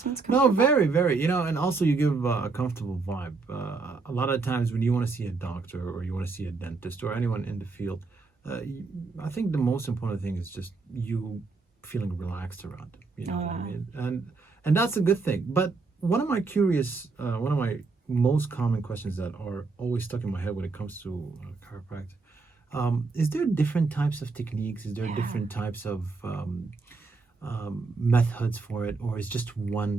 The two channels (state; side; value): quieter; left; 4.1 dB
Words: No, comfortable? very, very. You know, and also you give a comfortable vibe. A lot of times when you want to see a doctor or you want to see a dentist or anyone in the field, I think the most important thing is just you feeling relaxed around them. You know what I mean? And that's a good thing. But one of my most common questions that are always stuck in my head when it comes to chiropractic. Is there different types of techniques? Is there Yeah. different types of methods for it, or is just